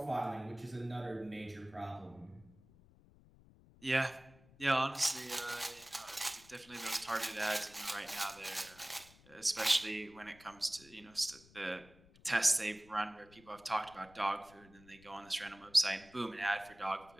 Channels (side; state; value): left; noise; rumble, 25 dB below the sound